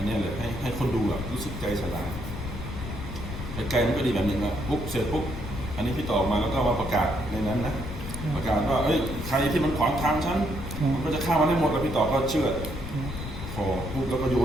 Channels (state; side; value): noise; left; rumble, 8 dB below the sound